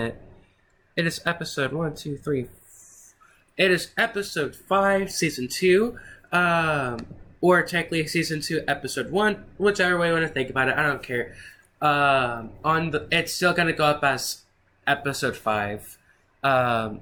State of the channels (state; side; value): identical; both; correlation 1.00